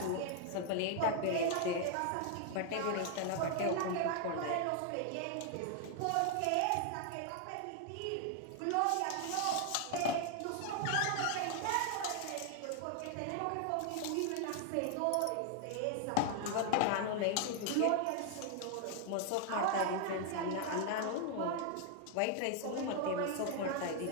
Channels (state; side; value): different; both; correlation 0.00